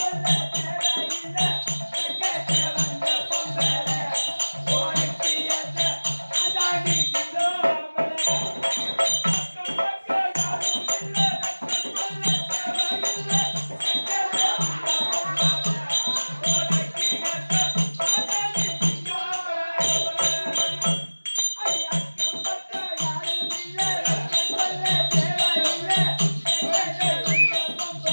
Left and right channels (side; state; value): both; inverted; correlation -1.00